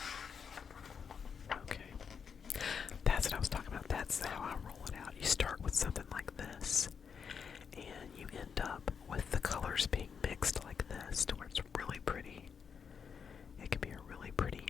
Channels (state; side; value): quieter; right; 6.6 dB